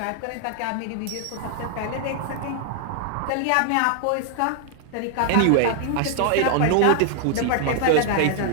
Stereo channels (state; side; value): different; both; correlation 0.00